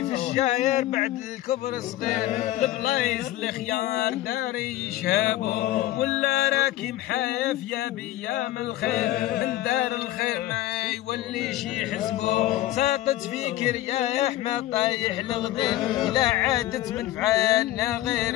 في الشاير بعد الكبر صغير، البلايص الخيار داري يشهبو. ولا راكي محايف يا بيام الخير، من دار الخير ما يوليش يحسبو. ساقط فيك رياح ما طايح الغدير، لا عادت من فعالنا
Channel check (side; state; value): right; quieter; 15.1 dB